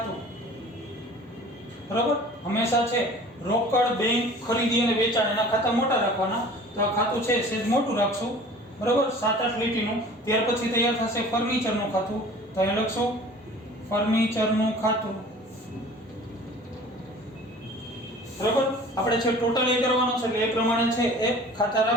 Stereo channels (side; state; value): both; normal; correlation 0.45